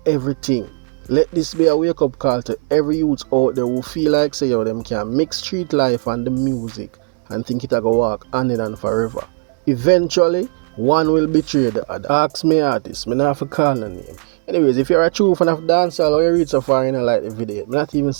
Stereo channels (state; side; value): quieter; left; 38.8 dB